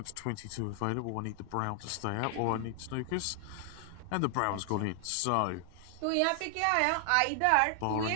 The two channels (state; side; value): different; both; correlation 0.00